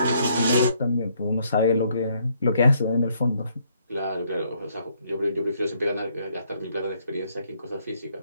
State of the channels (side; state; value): both; inverted; correlation -0.70